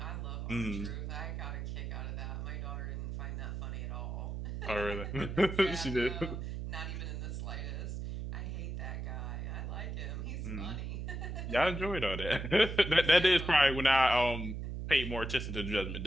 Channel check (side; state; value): right; noise; hum, 5 dB below the sound